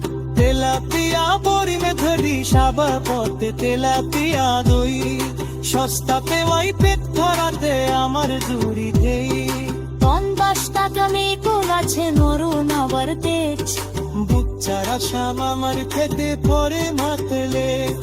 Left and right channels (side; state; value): both; identical; correlation 1.00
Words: তেলাপিয়া বরিমে ধরি সাবা পথে, তেলাপিয়া দই সস্তা পেওয়াই পেট ধরাতে আমার জুড়ি দেই। 50 টাকা মেকুল আছে নরুন আবার তেজ, বুচ্চারা শাম আমার খেতে পরে মাতলে।